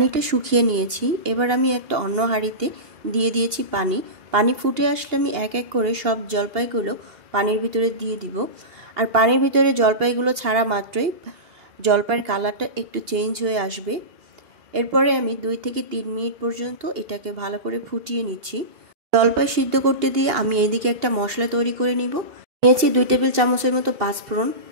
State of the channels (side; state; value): left; late; 2.8 ms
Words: শুকিয়ে নিয়েছি। এবার আমি একটা অন্য হাঁড়িতে দিয়ে দিয়েছি পানি ফুটে আসলে আমি এক এক করে সব জলপাইগুলো পানির ভিতরে দিয়ে দিব। আর পানির ভিতরে জলপাইগুলো ছাড়া মাত্রই জলপাইয়ের কালারটা একটু চেঞ্জ হয়ে আসবে। এরপরে আমি 2 থেকে 3 মিনিট পর্যন্ত এটাকে ভালো করে ফুটিয়ে নিচ্ছি। জলপাই সিদ্ধ করতে দিয়ে আমি এদিকে একটা মশলা তৈরি করে নিব। নিয়েছি 2 টেবিল চামচের মতো পাঁচফোড়ন,